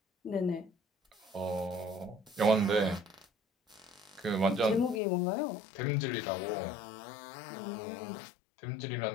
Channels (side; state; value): right; drops out; at 5.0 s